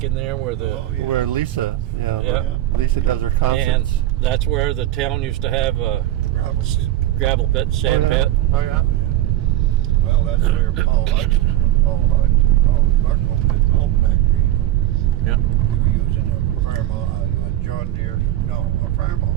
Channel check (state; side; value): quieter; left; 14.0 dB